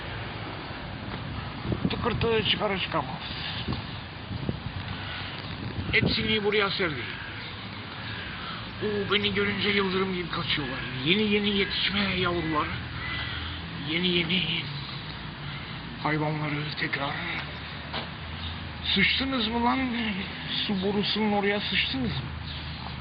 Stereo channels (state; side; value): identical; both; correlation 1.00